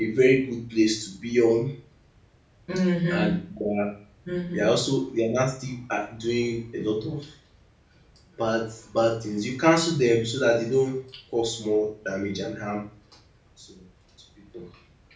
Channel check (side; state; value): both; identical; correlation 1.00